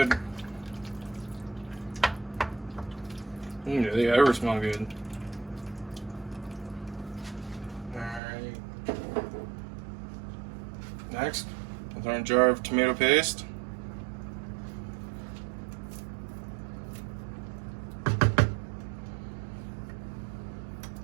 They ever smell good. Alright. Next, with our jar of tomato paste.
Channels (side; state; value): left; drops out; at 8.2 s